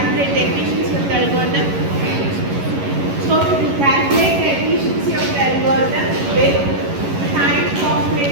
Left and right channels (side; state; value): left; late; 11 ms